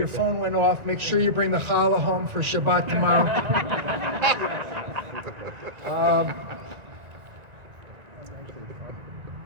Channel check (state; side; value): late; left; 1.9 ms